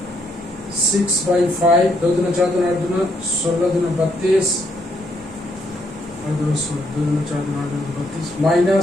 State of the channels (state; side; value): normal; both; correlation 0.73